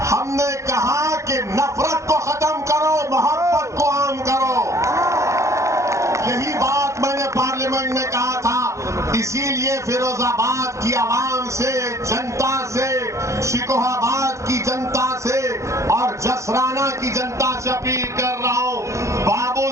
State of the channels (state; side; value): late; left; 0.15 ms